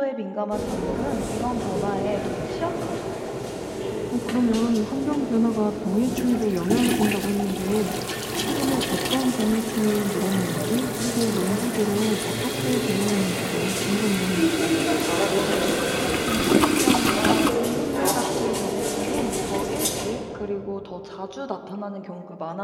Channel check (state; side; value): identical; both; correlation 1.00